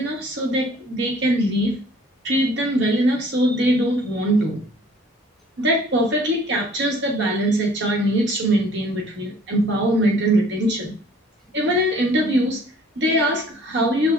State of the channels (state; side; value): normal; both; correlation 0.54